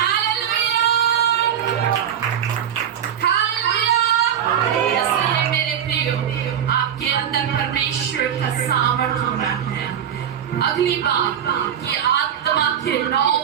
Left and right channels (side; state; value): left; quieter; 9.3 dB